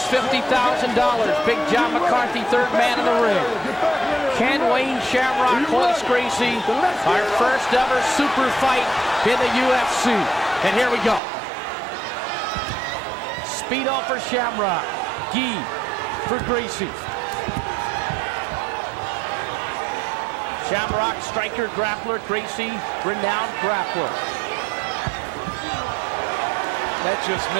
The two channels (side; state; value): left; drops out; at 11.2 s